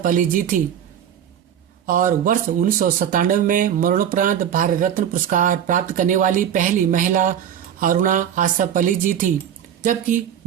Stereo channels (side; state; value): left; quieter; 9.5 dB